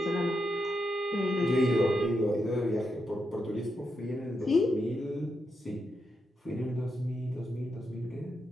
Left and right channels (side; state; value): both; normal; correlation 0.84